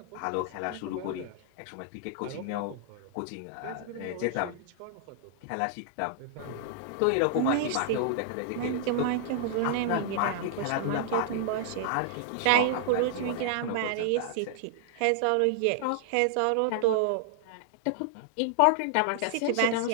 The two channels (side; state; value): both; different; correlation -0.01